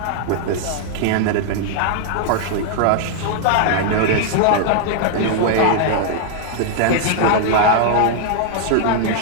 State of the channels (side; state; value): both; different; correlation -0.01